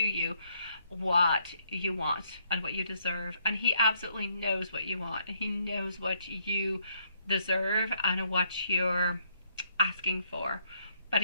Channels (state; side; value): inverted; both; correlation -0.71